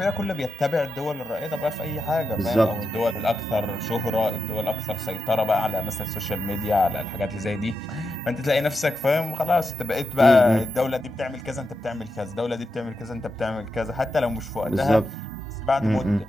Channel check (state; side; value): normal; both; correlation 0.87